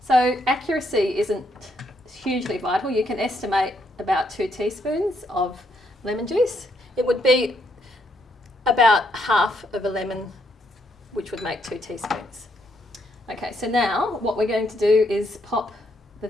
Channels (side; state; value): both; normal; correlation 0.75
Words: So accuracy isn't hugely vital. You can estimate about 2 teaspoons of lemon juice. It would be about half of a lemon, which would make 2 teaspoons. Okay, so now what we're going to do is pop the